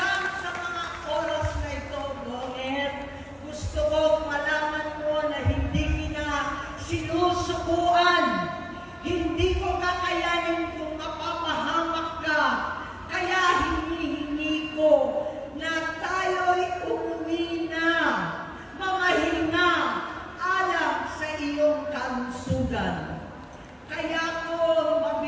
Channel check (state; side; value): identical; both; correlation 1.00